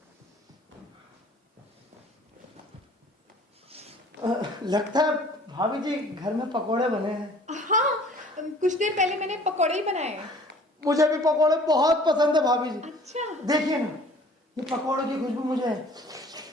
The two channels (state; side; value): normal; both; correlation 0.51